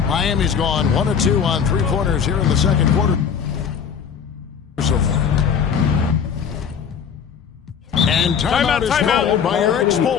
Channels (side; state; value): right; quieter; 7.1 dB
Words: Miami's gone 1 of 2 on 3-pointers here in the second quarter. So far. And timeout is called by Eric